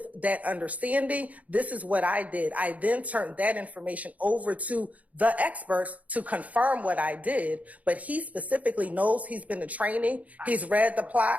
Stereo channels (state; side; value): late; left; 0.071 ms